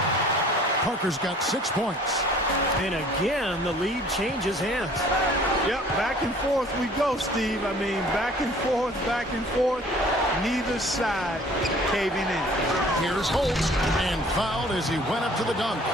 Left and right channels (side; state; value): both; normal; correlation 0.52